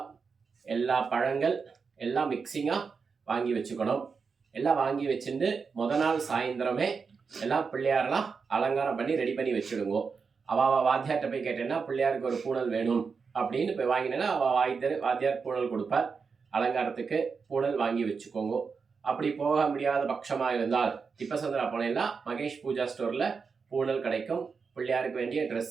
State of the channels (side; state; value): left; quieter; 5.3 dB